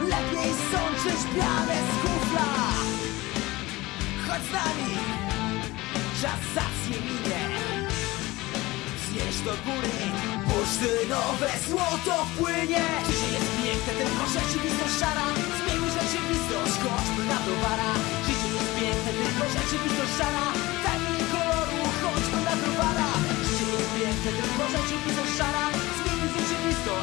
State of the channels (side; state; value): right; quieter; 20.1 dB